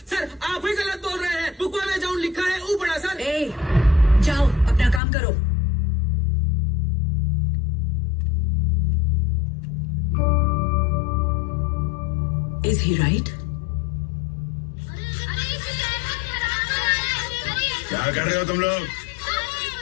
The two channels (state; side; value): drops out; right; at 5.0 s